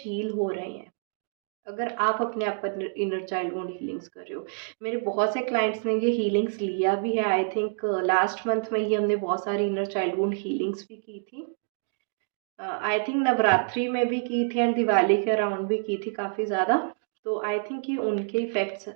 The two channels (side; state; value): left; silent; digital silence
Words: हो रहे हैं। अगर आप अपने आप पर इनर चाइल्ड वुंड हीलिंग्स कर रहे हो। मेरे बहुत से क्लाइंट्स ने ये हीलिंग्स लिया भी है। आई थिंक लास्ट मंथ में ही हमने बहुत सारी इनर चाइल्ड वुंड हीलिंग्स भी की थी। आई थिंक नवरात्रि में भी की थी एंड दिवाली के अराउंड भी की थी काफ़ी ज़्यादा। तो आई थिंक ये उनके इफ़ेक्ट्स